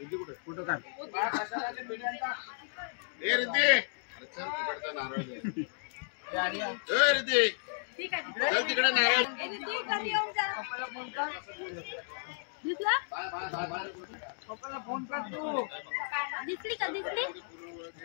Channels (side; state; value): right; silent; digital silence